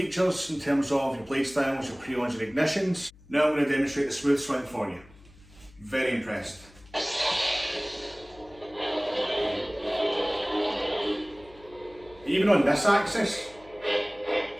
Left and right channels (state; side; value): noise; left; hum, 24 dB below the sound